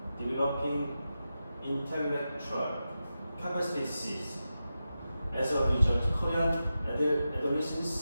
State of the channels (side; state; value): both; inverted; correlation -0.91